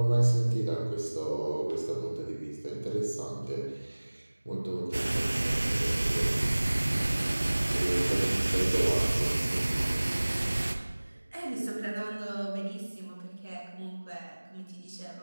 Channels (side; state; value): both; inverted; correlation -1.00